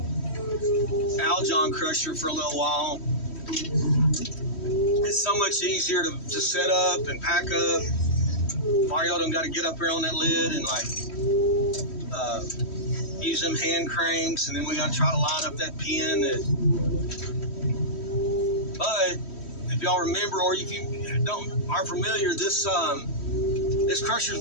Aljon crusher for a little while. It's so much easier to set up and pack up. Mario done got to get up here on that lid and like use them hand cranks, and then we got to try to line up that pin. But if y'all remember, or if you aren't familiar, this crusher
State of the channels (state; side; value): late; right; 3.1 ms